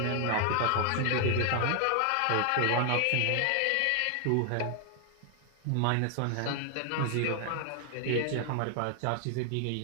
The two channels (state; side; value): different; both; correlation 0.00